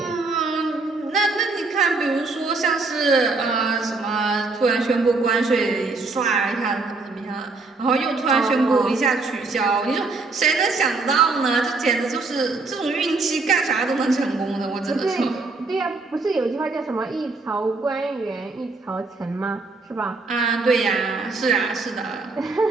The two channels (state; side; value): quieter; left; 3.8 dB